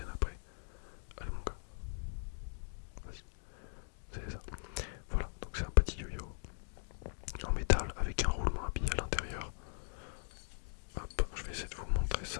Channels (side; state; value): right; silent; digital silence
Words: après. Allez mon gars, vas-y, c'est ça. Voilà, donc c'est un petit yo-yo en métal avec un roulement à billes à l'intérieur. Hop, je vais essayer de vous montrer